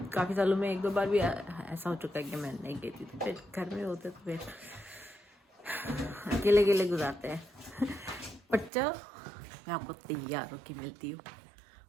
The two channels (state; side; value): drops out; left; at 8.7 s